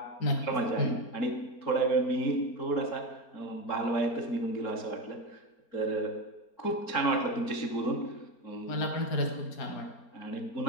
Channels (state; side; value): late; right; 4.4 ms